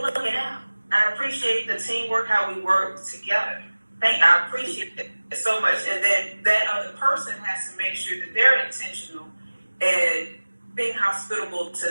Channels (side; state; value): both; inverted; correlation -1.00